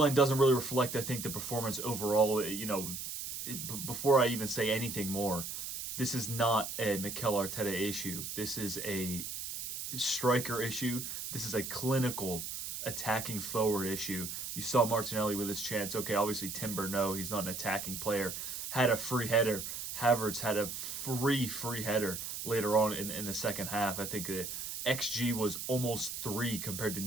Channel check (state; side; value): noise; right; hiss, 6 dB below the sound